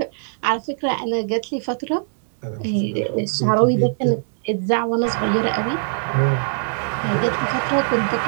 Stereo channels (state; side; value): silent; left; digital silence